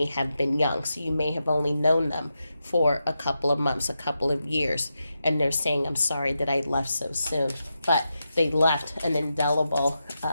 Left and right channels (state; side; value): inverted; both; correlation -0.88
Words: have been young. So you may have only known them for a couple of months, a couple of years. And they're saying, I'm sorry that I left so soon. But they left an indelible